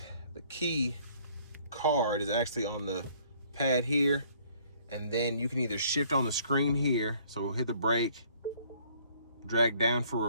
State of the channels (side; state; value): both; inverted; correlation -0.60